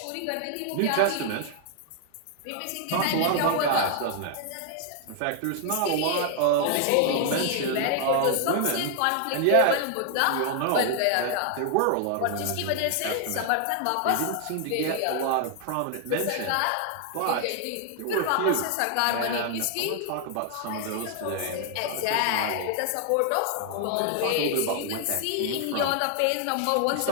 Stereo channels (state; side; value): different; both; correlation 0.00